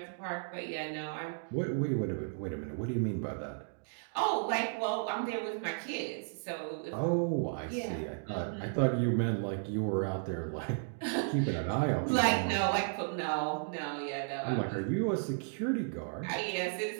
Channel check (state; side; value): silent; left; digital silence